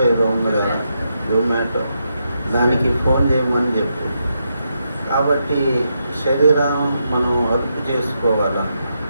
ఏదో ఉంది కదా, జొమాటో, దానికి ఫోన్ చేయమని చెప్పు. కాబట్టి శరీరం మనం అదుపు చేసుకోవాలి.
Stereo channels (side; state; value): both; inverted; correlation -0.83